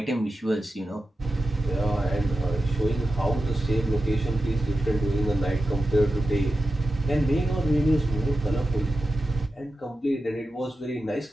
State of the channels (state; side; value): normal; both; correlation 0.91